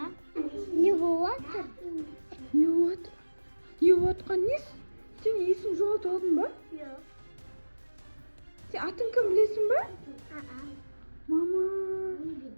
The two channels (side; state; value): both; inverted; correlation -1.00